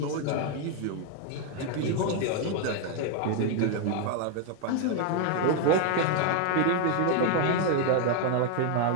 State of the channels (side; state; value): both; different; correlation 0.01